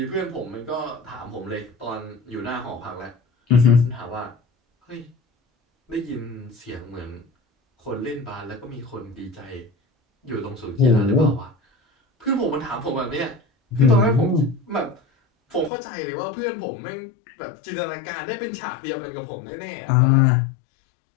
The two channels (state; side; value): drops out; right; at 15.7 s